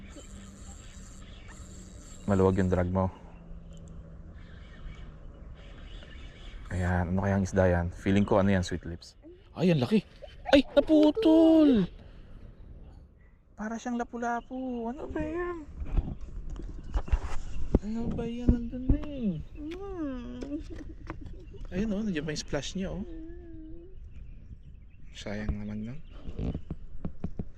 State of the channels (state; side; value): identical; both; correlation 1.00